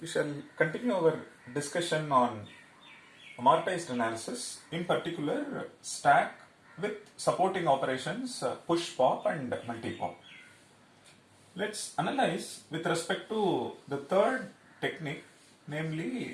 We shall continue our discussion on amortized analysis, in particular stack with supporting operations push pop and multi pop. Let's analyze with respect to the third technique,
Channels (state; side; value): identical; both; correlation 1.00